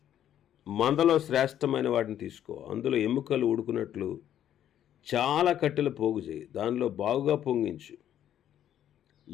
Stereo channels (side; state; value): right; quieter; 10.7 dB